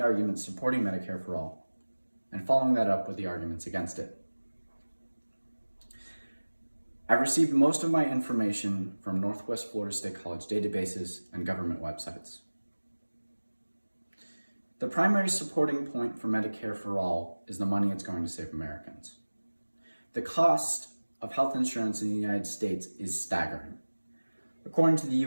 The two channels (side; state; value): both; inverted; correlation -1.00